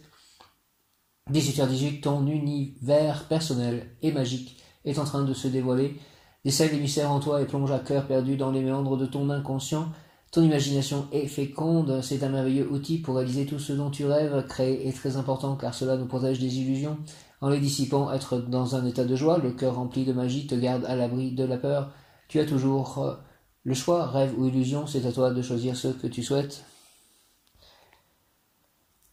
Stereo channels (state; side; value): identical; both; correlation 1.00